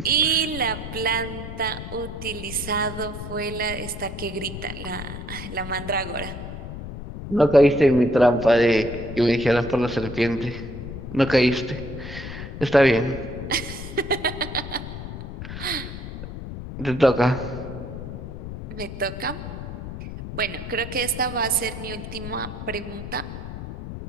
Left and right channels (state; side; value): noise; left; rumble, 9 dB below the sound